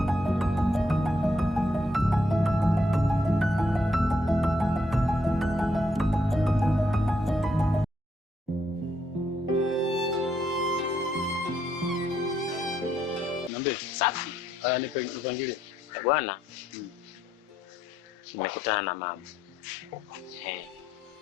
Niambie. Safi. Haya nipangilie. Bwana. Nimekutana na mama.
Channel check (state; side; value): normal; both; correlation 0.75